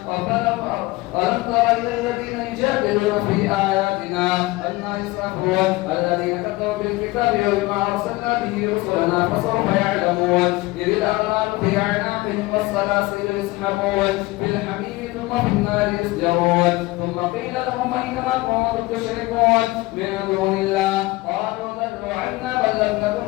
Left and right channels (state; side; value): quieter; right; 20.7 dB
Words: ألم تر إلى الذين يجادلون في آياتنا أنى يصرفون الذين كفروا بالكتاب وما أرسلنا به رسلنا فسوف يعلمون. إذ الأغلال في أعناقهم والسلاسل يسحبون في الحميم ثم في النار يسجرون. ثم قيل لهم أين ما كنتم تشركون من دون الله قالوا ضلوا عنا بل لم نكن